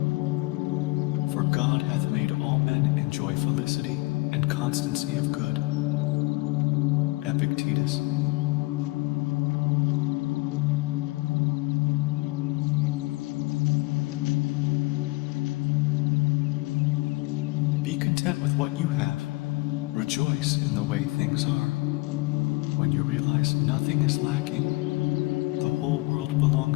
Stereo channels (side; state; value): right; quieter; 23.4 dB